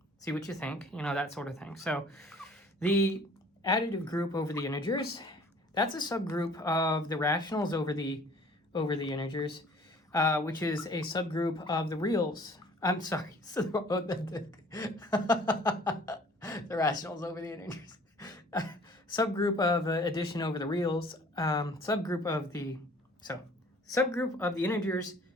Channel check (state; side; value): normal; both; correlation 0.52